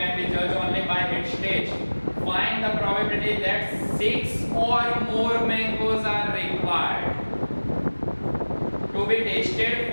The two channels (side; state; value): both; inverted; correlation -1.00